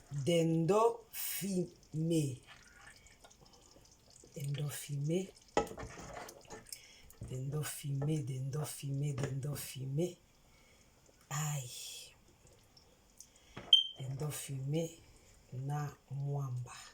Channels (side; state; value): both; identical; correlation 1.00